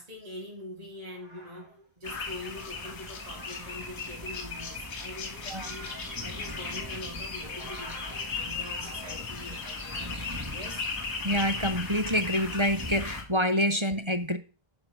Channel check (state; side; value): late; left; 1.3 ms